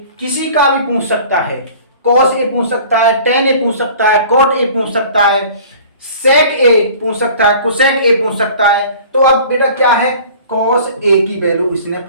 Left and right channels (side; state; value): both; inverted; correlation -0.46